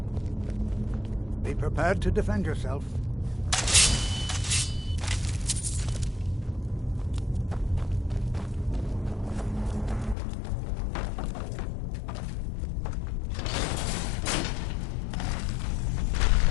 Be prepared to defend yourself.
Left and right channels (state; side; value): drops out; right; at 10.2 s